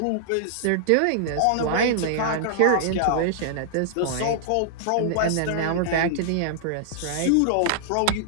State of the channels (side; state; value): both; different; correlation -0.01